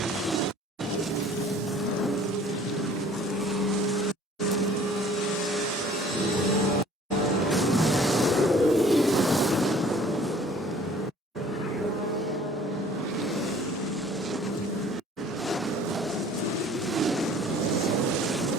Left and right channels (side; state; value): both; normal; correlation 0.52